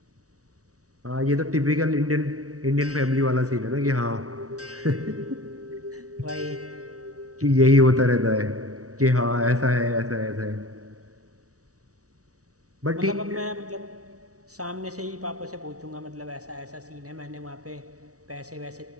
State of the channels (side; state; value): left; late; 0.66 ms